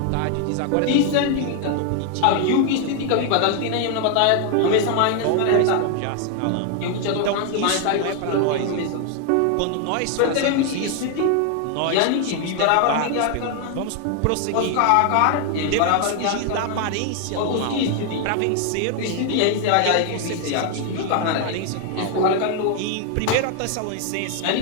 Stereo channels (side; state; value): both; different; correlation 0.00